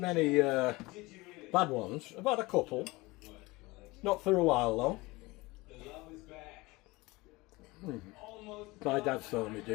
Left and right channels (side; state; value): right; quieter; 22.3 dB